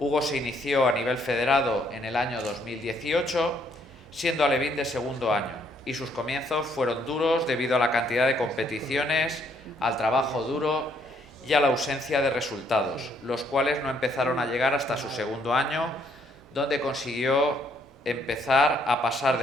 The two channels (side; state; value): both; normal; correlation 0.69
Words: se inició a nivel federado en el año 2018, siendo alevín de segundo año, y sus comienzos fueron duros debido a la cantidad de competiciones, al trabajo duro y a la ausencia de resultados, los cuales no empezaron a llegar hasta su segundo año, donde consiguió empezar a pasar